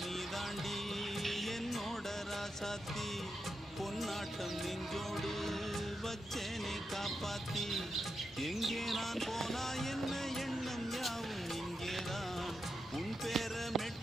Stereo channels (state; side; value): normal; both; correlation 0.87